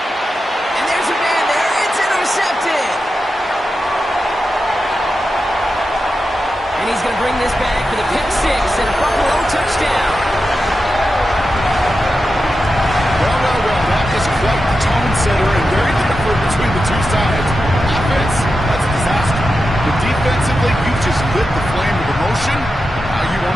And there's a man there. It's intercepted. And he's going to bring this back for the pick six and a Buffalo touchdown. Well. That is quite the tone setter and very different between the two sides. Offense, that's a disaster. But defensively, you just lit the flame of emotion. Now you want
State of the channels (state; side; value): normal; both; correlation 0.90